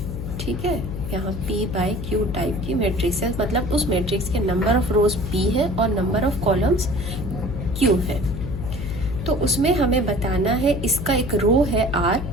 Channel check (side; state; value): left; noise; hum, 6 dB below the sound